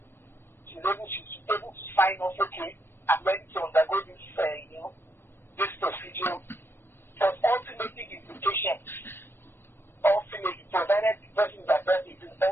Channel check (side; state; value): right; late; 0.10 ms